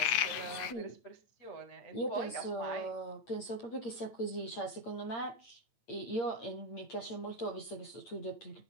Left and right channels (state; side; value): late; right; 8.7 ms